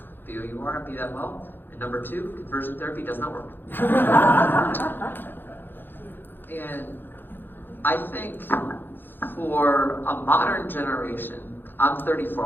be who you are and be that well. And number two, conversion therapy does not work. And I think for a modern generation, I'm 34,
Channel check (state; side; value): late; right; 0.097 ms